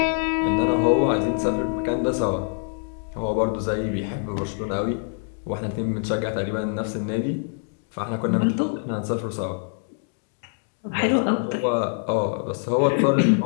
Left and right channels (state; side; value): silent; right; 56 dB below the other